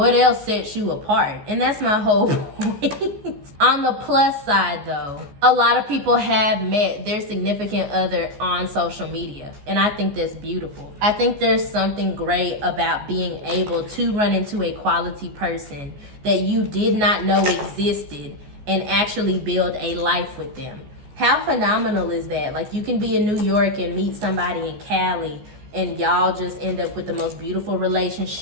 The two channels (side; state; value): left; late; 14 ms